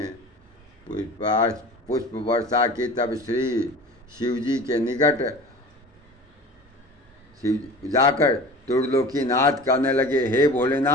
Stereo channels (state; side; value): normal; both; correlation 0.39